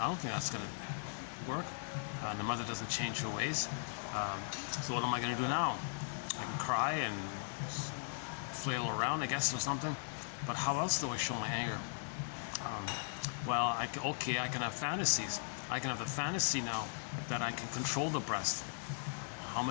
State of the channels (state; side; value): silent; right; digital silence